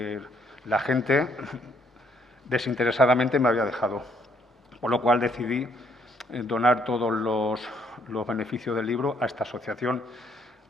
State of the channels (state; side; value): normal; both; correlation 0.68